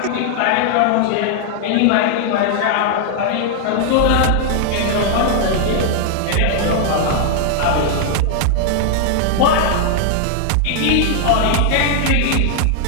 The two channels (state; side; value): different; both; correlation 0.00